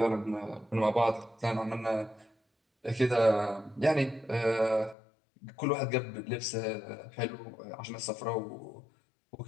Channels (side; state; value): right; drops out; at 5.0 s